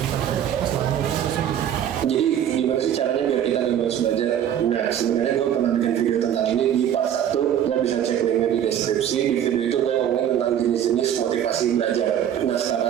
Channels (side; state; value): left; quieter; 10.0 dB